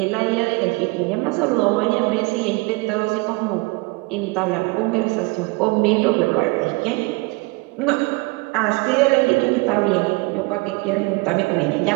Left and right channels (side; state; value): left; quieter; 25.7 dB